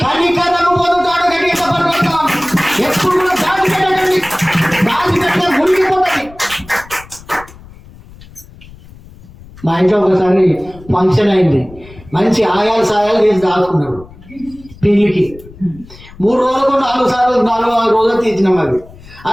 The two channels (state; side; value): noise; left; rumble, 21 dB below the sound